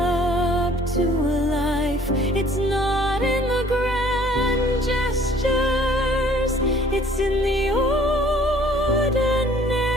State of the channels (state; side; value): normal; both; correlation 0.55